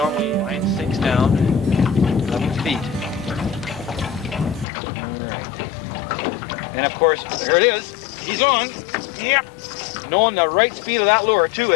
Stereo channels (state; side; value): drops out; right; at 4.7 s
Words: line sinks down 11 feet. And of course, there it is. He's on. Yep. Knowing the right speed of that lure too